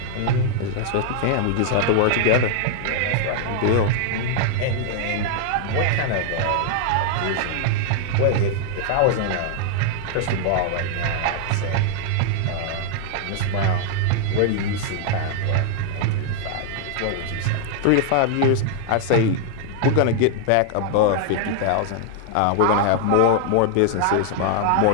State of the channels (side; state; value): both; different; correlation 0.00